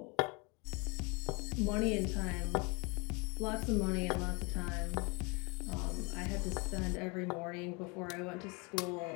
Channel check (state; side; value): quieter; right; 29.7 dB